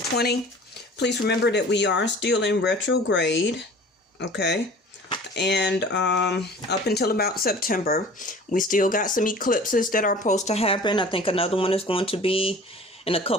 Please remember that we are still in retrograde, okay? And up until about September, we still got some eclipses that are supposed to happen. I think another one is going to be in a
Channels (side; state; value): both; normal; correlation 0.45